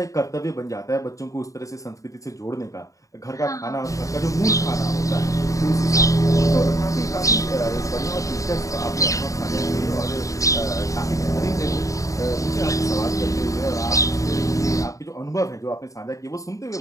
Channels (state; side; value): late; right; 0.16 ms